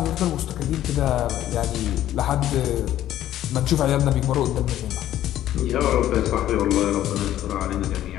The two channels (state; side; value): quieter; right; 12.7 dB